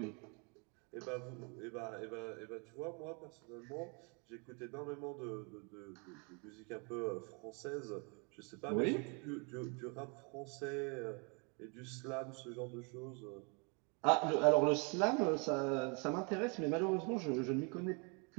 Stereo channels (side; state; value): left; quieter; 34.0 dB